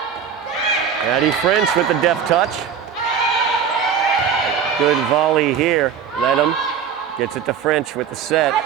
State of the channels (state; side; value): quieter; left; 7.4 dB